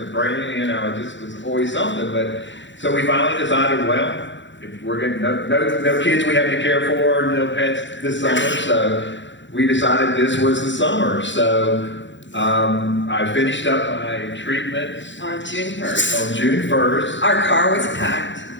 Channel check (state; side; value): late; right; 0.54 ms